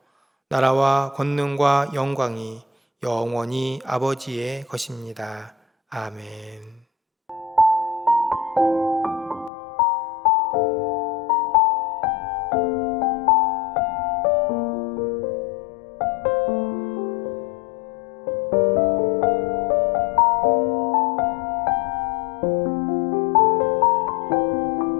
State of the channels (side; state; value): right; drops out; at 9.5 s